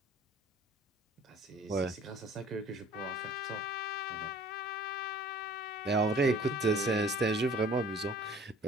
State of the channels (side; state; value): both; normal; correlation 0.51